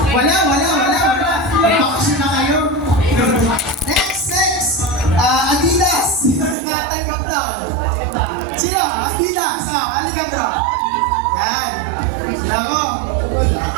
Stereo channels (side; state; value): left; drops out; at 6.6 s